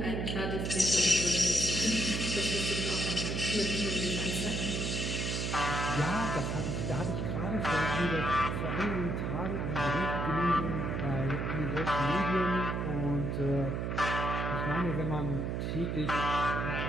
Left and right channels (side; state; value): right; noise; hum, 1 dB below the sound